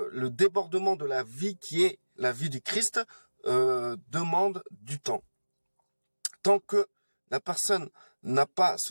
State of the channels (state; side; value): inverted; both; correlation -1.00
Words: débordement de la vie qui est la vie du Christ demande du temps. Tant que la personne n'a pas